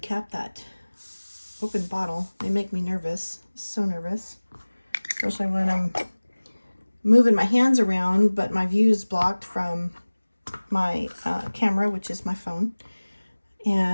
that open bottle. They make me nervous, so nervous, especially when I'm moving my hands around, but my view is blocked from my camera, which is my phone,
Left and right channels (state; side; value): inverted; both; correlation -1.00